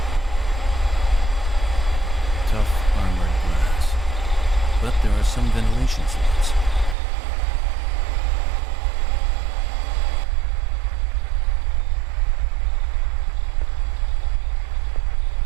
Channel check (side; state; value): left; drops out; at 7.0 s